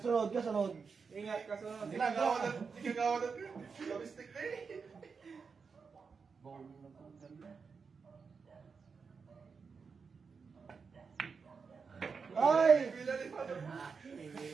kasunod. Ingat ka sunod. Ginagawa na, ginagawa na. Gamistik na eh. Ay! Bila ni Father.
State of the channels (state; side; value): quieter; left; 5.4 dB